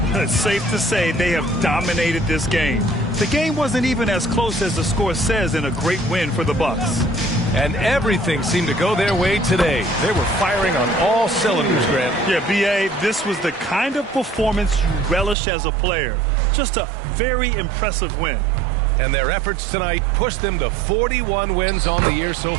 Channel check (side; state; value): left; drops out; at 15.4 s